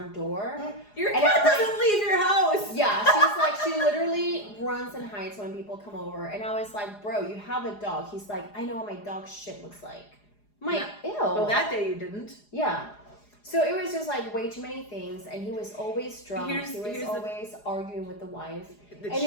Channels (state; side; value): late; right; 4.8 ms